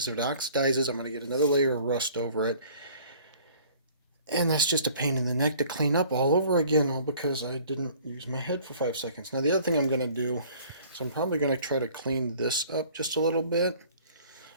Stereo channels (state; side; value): inverted; both; correlation -0.53